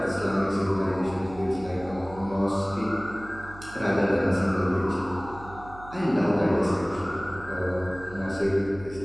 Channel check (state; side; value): noise; right; hum, 17 dB below the sound